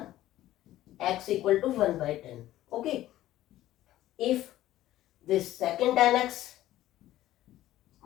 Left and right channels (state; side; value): quieter; right; 14.4 dB